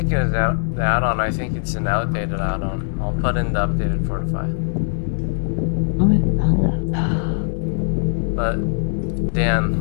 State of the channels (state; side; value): silent; right; 64 dB below the other